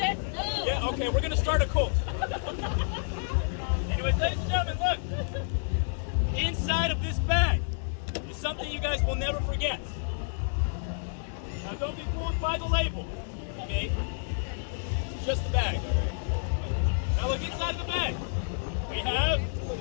No! Yeah, okay, we're gonna start a cult. Anyways, ladies and gentlemen, look! Inside of this bag is something you guys will never forget. Now don't be fooled by the label. Okay? It's just the bag. Now look inside the bag. We have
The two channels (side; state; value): right; silent; digital silence